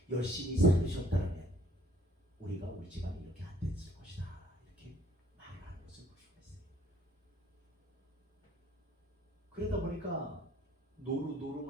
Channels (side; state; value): both; normal; correlation 0.61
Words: 열심히 살으셨다면 우리가 우리 집안이 이렇게 안 됐을 것이다. 이렇게 말하는 것을 볼 수가 있어요. 그러다 보니까